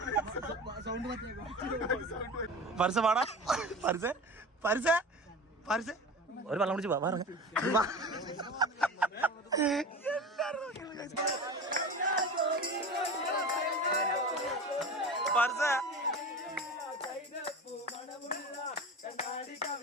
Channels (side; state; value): both; normal; correlation 0.32